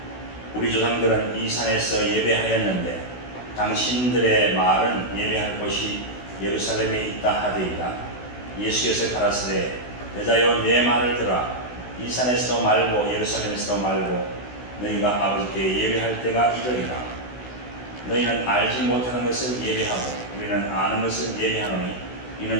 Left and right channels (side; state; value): right; late; 16 ms